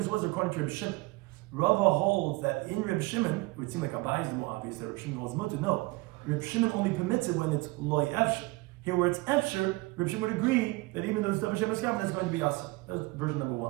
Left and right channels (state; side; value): quieter; left; 23.0 dB